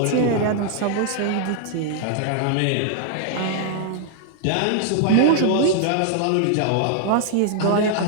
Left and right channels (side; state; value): both; different; correlation 0.00